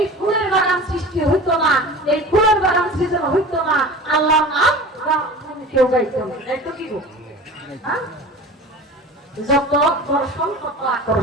ফুলের বাগান সৃষ্টি হইতো না, এই ফুলের বাগান সৃজন হইতো না, আল্লাহর নাম কেউ গাইতো না। তাইতো কি গো? যত দর্শন তত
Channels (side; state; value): both; normal; correlation 0.37